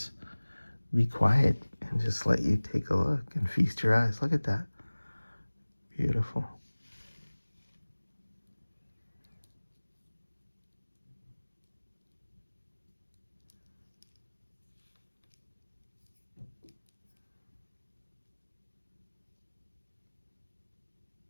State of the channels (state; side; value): inverted; both; correlation -1.00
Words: be quiet and just let you take a look and feast your eyes. Look at that. Beautiful.